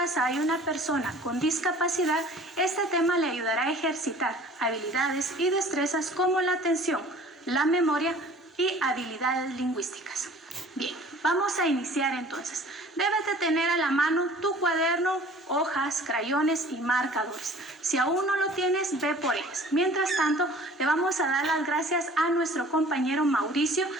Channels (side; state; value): both; normal; correlation 0.48